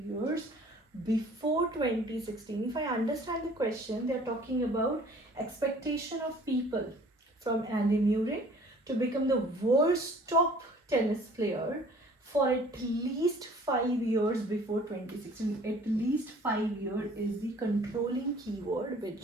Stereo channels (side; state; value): both; normal; correlation 0.52